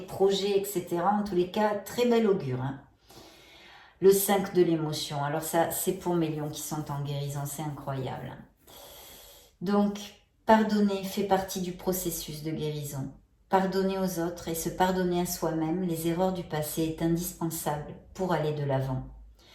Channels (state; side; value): identical; both; correlation 1.00